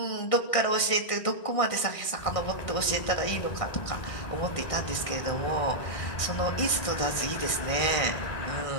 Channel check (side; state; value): right; late; 1.6 ms